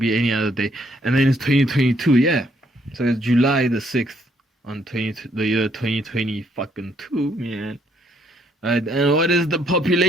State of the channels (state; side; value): normal; both; correlation 0.70